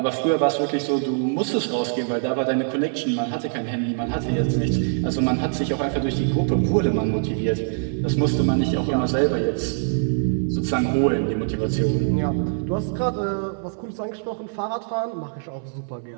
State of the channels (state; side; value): silent; left; 59 dB below the other